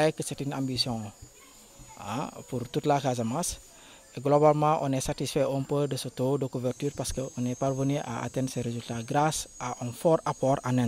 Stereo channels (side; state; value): both; identical; correlation 1.00